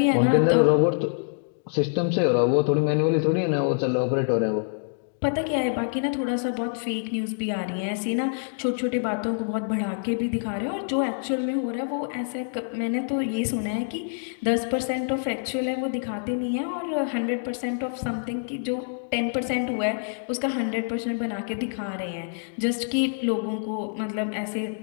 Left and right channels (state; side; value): silent; right; digital silence